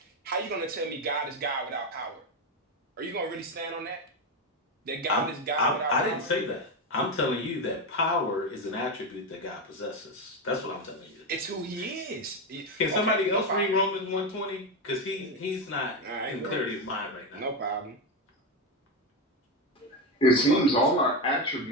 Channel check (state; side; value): normal; both; correlation 0.12